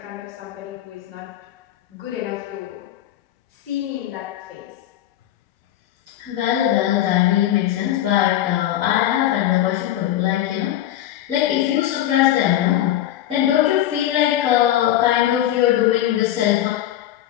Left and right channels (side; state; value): right; quieter; 12.7 dB